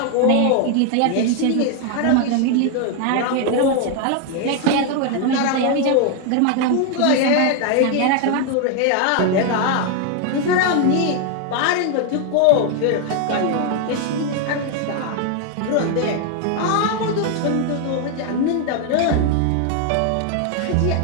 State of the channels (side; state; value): both; different; correlation 0.01